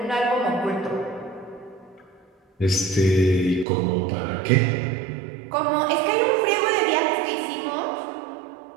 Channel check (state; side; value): drops out; left; at 3.7 s